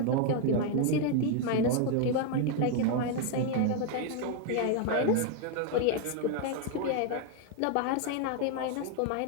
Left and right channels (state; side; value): different; both; correlation 0.01